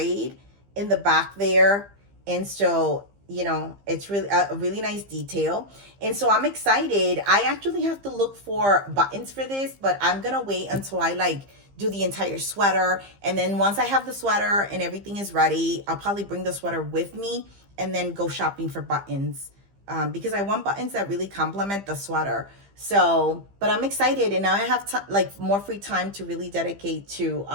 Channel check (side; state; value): left; late; 15 ms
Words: in the back there. And so, you know, it's really a really nice detail. And so I'm excited. I actually have to look for buttons for this, but I'm gonna wait until I like do the entire sweater. And then once I have the sweater and everything is ready, I'll probably bring the sweater with me and then go shopping for buttons, because I want buttons that really complement the sweater. So, but I'm excited, and now I have like more free time to really dedicate to